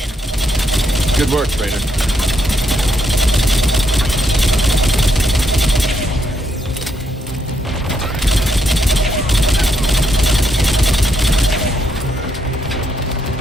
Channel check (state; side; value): normal; both; correlation 0.77